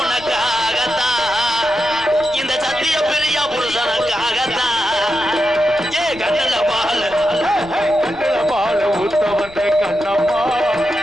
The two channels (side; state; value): left; noise; rumble, 20 dB below the sound